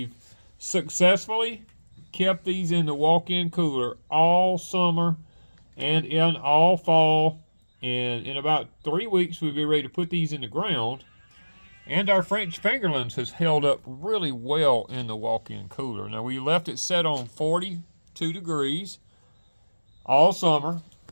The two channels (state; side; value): inverted; both; correlation -1.00